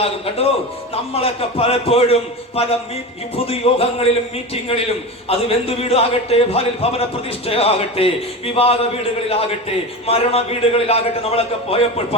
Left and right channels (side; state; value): both; normal; correlation 0.25